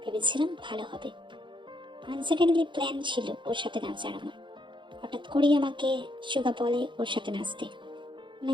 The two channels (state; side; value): late; left; 0.23 ms